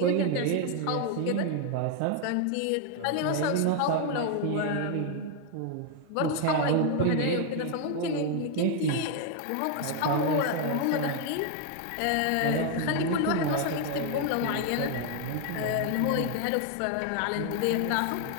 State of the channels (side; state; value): both; different; correlation 0.01